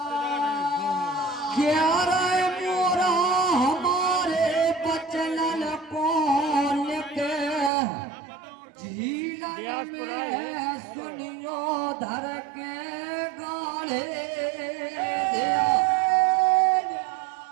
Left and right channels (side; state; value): left; drops out; at 7.7 s